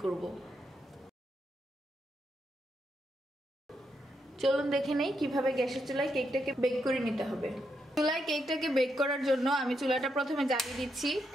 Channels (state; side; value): normal; both; correlation 0.81